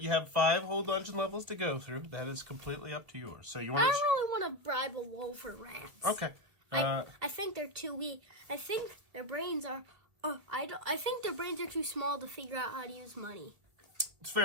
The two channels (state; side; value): late; left; 2.4 ms